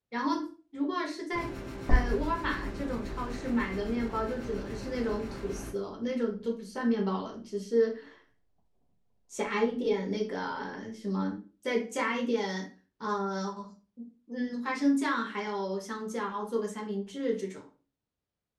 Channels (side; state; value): both; identical; correlation 1.00